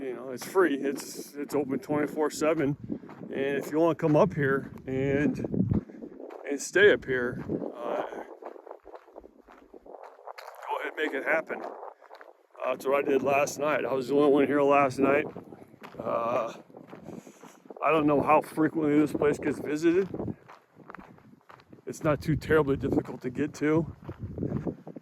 free. It's open 24/7. And if you want to come up here and stay up here, go ahead and make it happen. That's what I did last night. I was the only one here last night. I don't know how frequently this place gets visited. It's not too terribly difficult to get to.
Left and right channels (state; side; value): identical; both; correlation 1.00